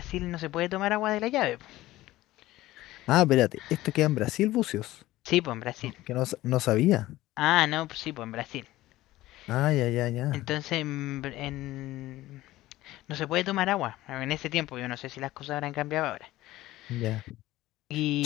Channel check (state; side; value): quieter; right; 16.6 dB